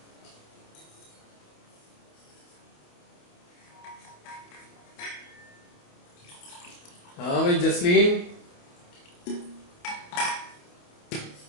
हाँ भाई जसलीन।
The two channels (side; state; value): right; late; 28 ms